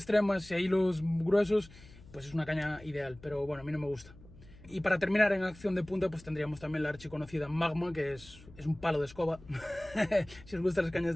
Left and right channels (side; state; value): left; noise; hum, 21 dB below the sound